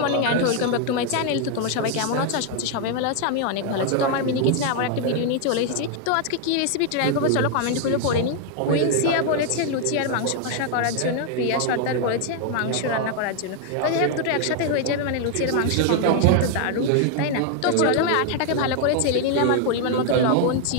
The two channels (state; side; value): different; both; correlation 0.00